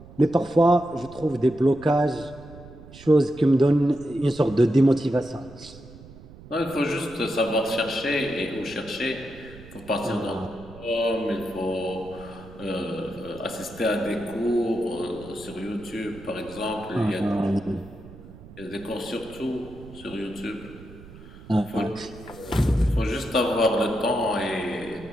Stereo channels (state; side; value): noise; right; rumble, 18 dB below the sound